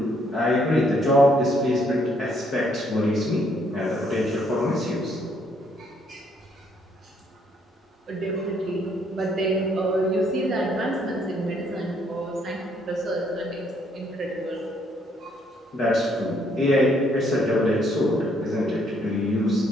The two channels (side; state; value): both; normal; correlation 0.69